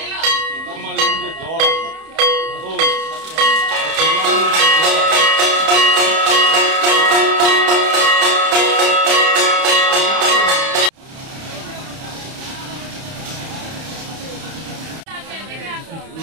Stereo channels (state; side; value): late; left; 31 ms